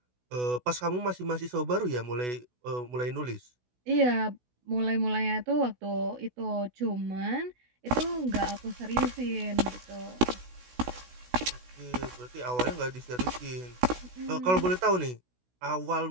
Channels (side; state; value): left; late; 16 ms